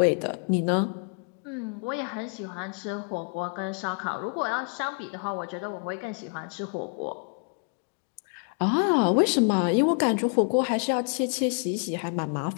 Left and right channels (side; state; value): right; quieter; 38.9 dB